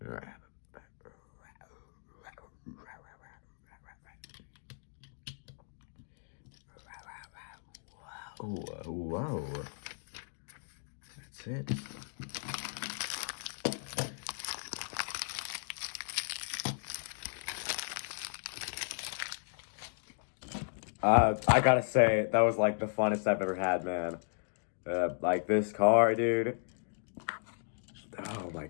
Whoa. That's it. I gotta say, that was like the funnest I've ever had, man. Like this car, dude. Oh my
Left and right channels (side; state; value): right; silent; digital silence